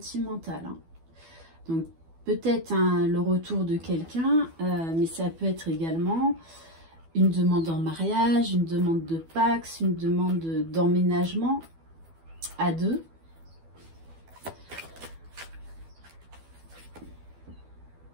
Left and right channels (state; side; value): late; left; 12 ms